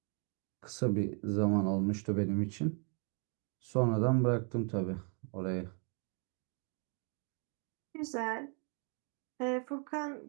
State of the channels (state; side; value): quieter; left; 39.4 dB